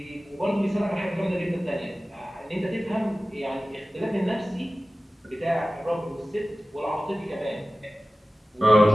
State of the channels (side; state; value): both; normal; correlation 0.96